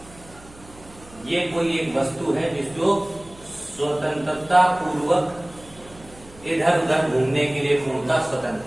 ये कोई एक वस्तु है जो स्वतंत्रता पूर्वक इधर उधर घूमने के लिए पूर्णतः स्वतंत्र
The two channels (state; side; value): noise; right; hum, 22 dB below the sound